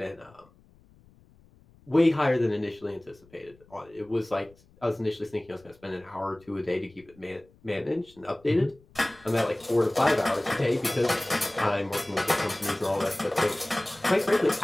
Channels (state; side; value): noise; left; rumble, 28 dB below the sound